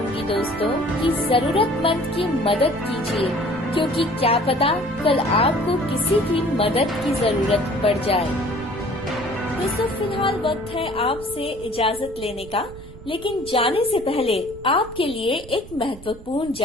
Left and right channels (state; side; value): noise; right; rumble, 17 dB below the sound